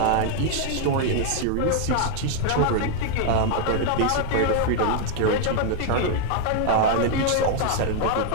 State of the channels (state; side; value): different; both; correlation 0.00